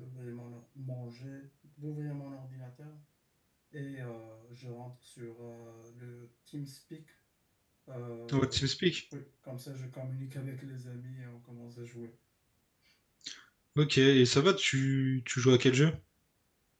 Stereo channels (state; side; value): identical; both; correlation 1.00